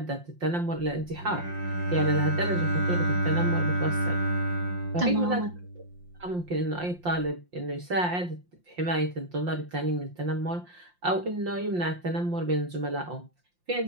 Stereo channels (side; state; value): left; late; 5.7 ms